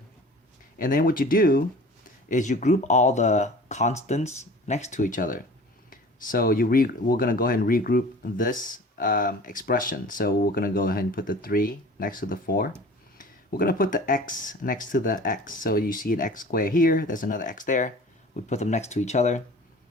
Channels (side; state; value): both; normal; correlation 0.43